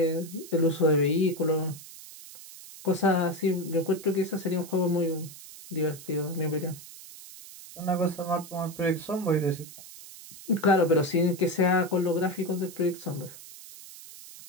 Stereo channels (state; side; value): noise; right; hiss, 16 dB below the sound